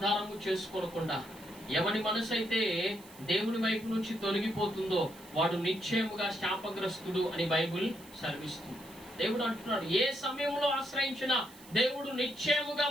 చేసుకోకుండా ఎవని మనసు అయితే దేవుని వైపు నుంచి తొలగిపోతుందో వాడు నిశ్చయముగా శాపగ్రస్తుడు అని బైబిల్ సెలవిస్తుంది. దేవుడు అంటున్నాడు, ఏ సమయంలో ఆశ్రయించినా దేవుడు నిశ్చయముగా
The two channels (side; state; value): right; noise; hiss, 21 dB below the sound